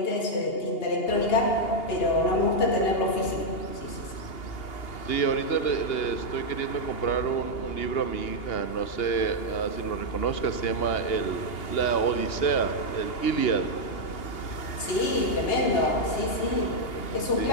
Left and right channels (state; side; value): late; right; 2.8 ms